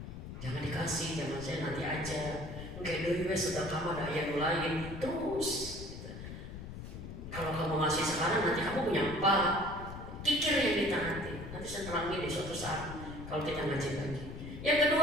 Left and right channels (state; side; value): noise; left; rumble, 10 dB below the sound